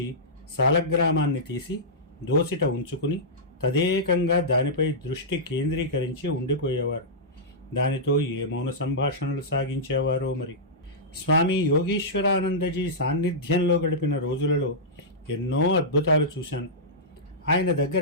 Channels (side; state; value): both; normal; correlation -0.14